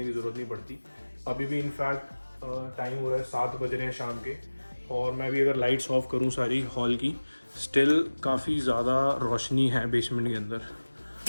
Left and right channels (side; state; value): both; inverted; correlation -1.00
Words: की ज़रूरत नहीं पड़ती। अभी भी इनफैक्ट टाइम हो रहा है 7 बज रहे हैं शाम के, और मैं भी अगर लाइट्स ऑफ करूँ सारी हॉल की, स्टिल काफ़ी ज़्यादा रोशनी है बेसमेंट के अंदर।